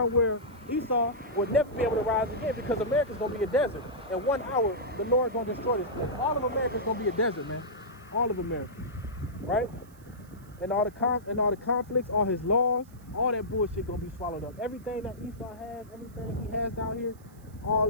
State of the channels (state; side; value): noise; right; hiss, 28 dB below the sound